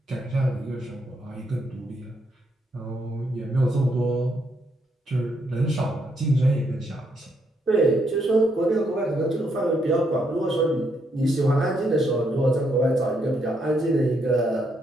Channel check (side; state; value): both; normal; correlation 0.76